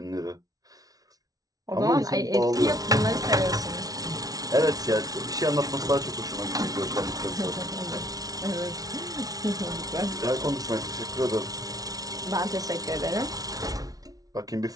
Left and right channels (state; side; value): late; left; 0.18 ms